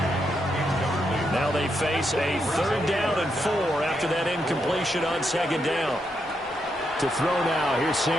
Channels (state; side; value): normal; both; correlation 0.81